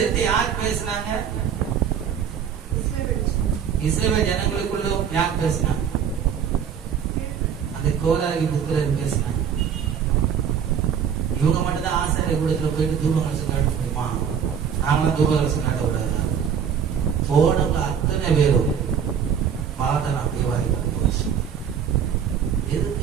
யார் பேசினாங்க? இஸ்ரவேல் ஜனங்களுக்குள்ள யார் பேசினாங்க? அந்த கோராகி புத்திரர் பேசினாங்க. இவங்க மட்டும்தான் ஆசிரியர் கூடத்துல போயிட்டு தூபகலசம் காட்ட முடியுமா? நாங்களாம் தூபகலசம் காட்ட விடாது. போனவங்க அத்தனை பேரும் பார்த்தா தேவாரி போச்சு.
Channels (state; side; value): quieter; left; 7.8 dB